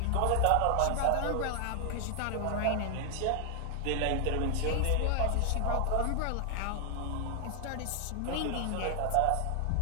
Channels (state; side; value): different; both; correlation 0.00